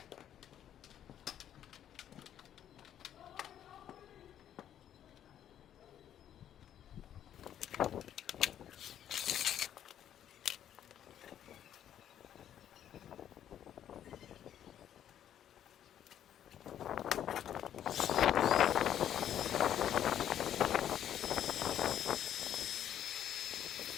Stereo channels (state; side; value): quieter; right; 10.4 dB